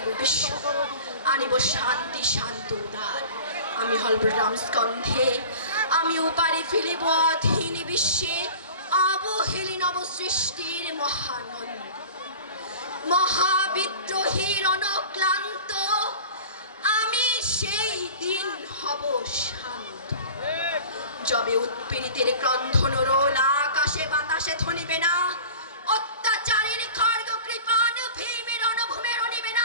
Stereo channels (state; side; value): inverted; both; correlation -0.39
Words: বিশ্ব, আনিব শান্তি শান্ত উদার, আমি হলবরাম স্কন্ধে, আমি উপারে ফেলিব অধীন বিশ্বে অবহেলি নব সৃষ্টির মহানন্দ, মহাবিদ্রোহীর অনক্লান্ত, আমি সেই দিন হব শান্ত, যবে উৎপীড়িতের ক্রন্ধন রোল আকাশে বাতাসে ধনিবে না, অত্যাচারের খড়গ কৃপান ভীমের অনুভূমের অনিবে